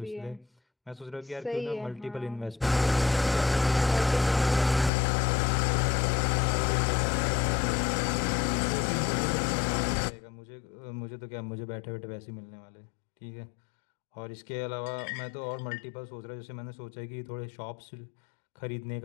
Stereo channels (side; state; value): right; drops out; at 4.9 s